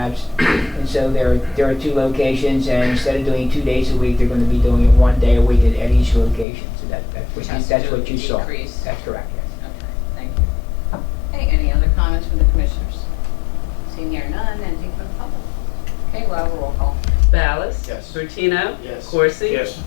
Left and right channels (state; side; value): drops out; right; at 6.5 s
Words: and so there are two locations, and instead of doing 2 days a week, they're going to be doing it 1 day a week at each location. So that's Which has to do what with you saw. decrease. That's correct, yes. Okay, thank you. Hey, any other comments from from the commissioners? Seeing here none, anything from the public? Okay, we'll have a roll call. Ballas? Yes. Bertino? Yes. Corsi? Yes.